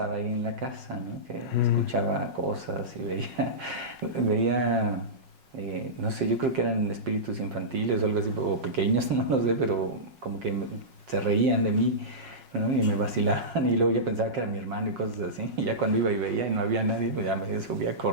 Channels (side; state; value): left; late; 5.5 ms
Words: ahí en la casa, ¿no? Que escuchaba cosas y veía no sé, yo creo que eran espíritus infantiles o algo así, o pequeños, no lo sé, pero como que se reían de mí, ¿no? Y me vacilaban, y luego yo pensaba que era mi hermano y cosas así, y ya cuando iba y veía y no había nadie, pues ya me subía